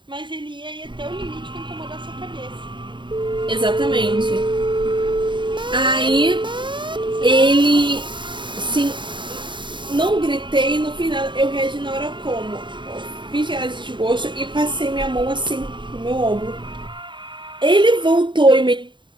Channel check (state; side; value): late; left; 0.23 ms